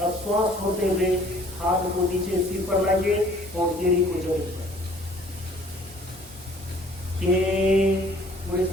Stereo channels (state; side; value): normal; both; correlation 0.55